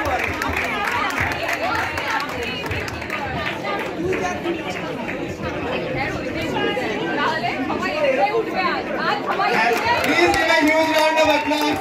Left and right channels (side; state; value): both; identical; correlation 1.00